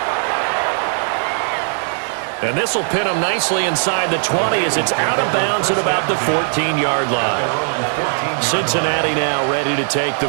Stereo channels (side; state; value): left; silent; 57 dB below the other